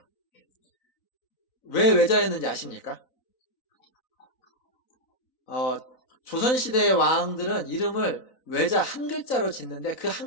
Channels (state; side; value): late; right; 4.0 ms